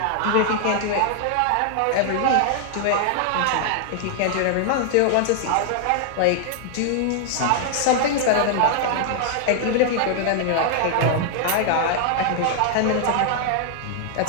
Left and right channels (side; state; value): both; different; correlation 0.00